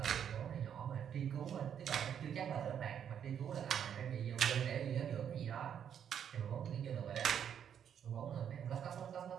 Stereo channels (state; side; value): quieter; left; 8.7 dB